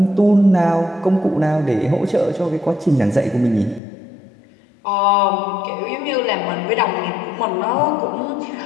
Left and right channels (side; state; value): right; drops out; at 3.8 s